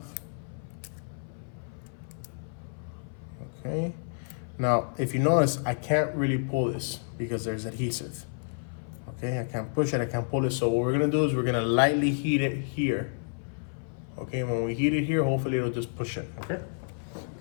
Okay. Now, if you notice, I can't really pull this because there's adhesive. Okay, I can't push it, I can't pull it. So what we're gonna do is we're gonna lightly heat it here. Okay, when we heat it here, hopefully it'll just push it, okay?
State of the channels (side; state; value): right; silent; 55 dB below the other